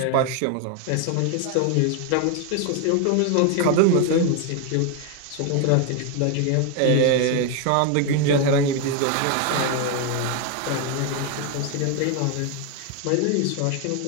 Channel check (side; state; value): both; different; correlation 0.01